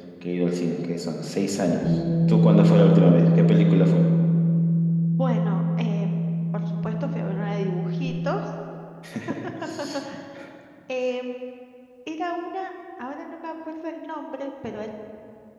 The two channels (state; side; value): identical; both; correlation 1.00